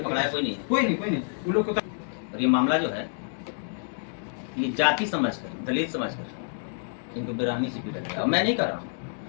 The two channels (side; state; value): right; silent; digital silence